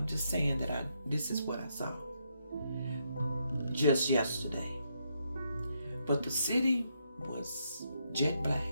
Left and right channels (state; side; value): inverted; both; correlation -0.78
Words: just saying that this is what I saw just yesterday. But the city was jet